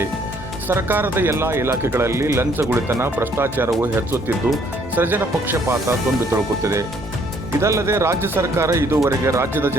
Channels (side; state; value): both; normal; correlation 0.64